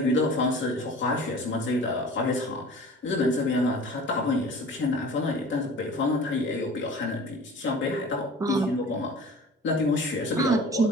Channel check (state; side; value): normal; both; correlation 0.42